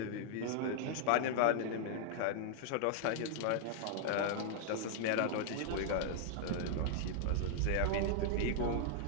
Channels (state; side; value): different; both; correlation -0.01